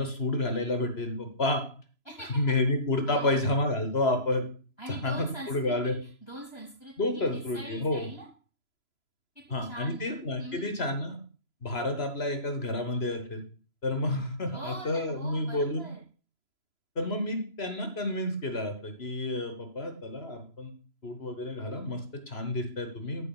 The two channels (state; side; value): late; right; 3.0 ms